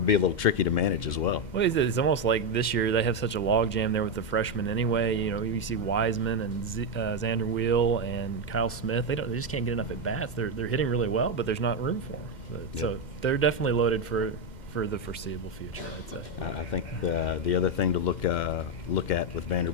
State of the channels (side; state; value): right; late; 2.1 ms